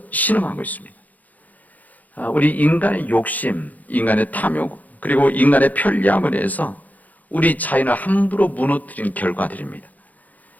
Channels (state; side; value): late; right; 0.079 ms